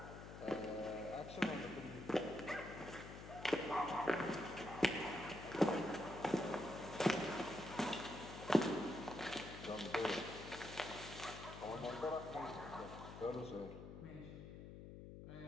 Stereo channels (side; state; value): left; noise; hum, 11 dB below the sound